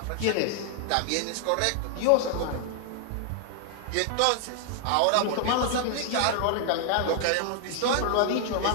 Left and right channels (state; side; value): different; both; correlation 0.00